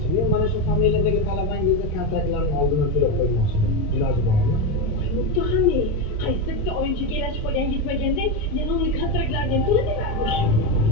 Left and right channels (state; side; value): late; right; 27 ms